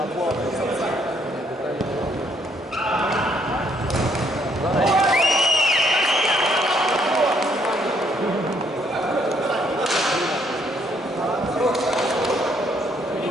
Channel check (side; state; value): both; normal; correlation 0.69